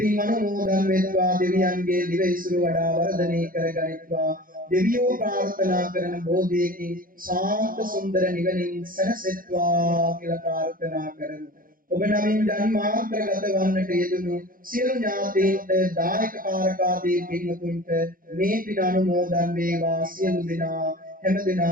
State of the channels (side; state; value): left; late; 0.41 ms